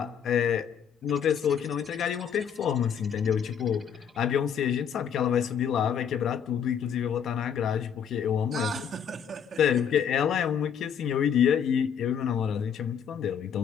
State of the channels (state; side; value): quieter; right; 7.9 dB